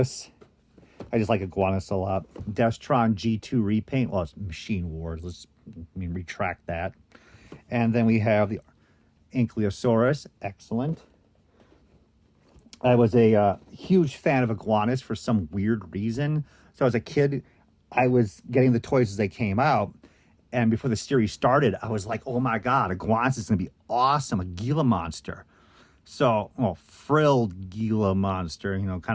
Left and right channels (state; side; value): identical; both; correlation 1.00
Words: I just like Iguanas a lot. Destron G2 repaint. Well, it's Machine Wars. Retract that. And then we have the Ankylosaurus. Excellent. I was a huge fan of Iguanas for some weird reason. So as a kid, I was getting the toys as they came out. And before the series started, I was like, oh my God, Iguanas is going to be awesome. A Gila monster. So, frilled Gila monster, kind